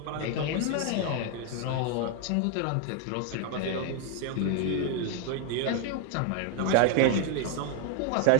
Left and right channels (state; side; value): different; both; correlation 0.01